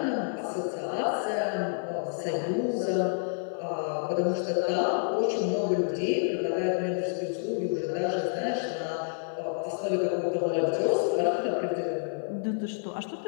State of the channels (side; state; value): right; silent; digital silence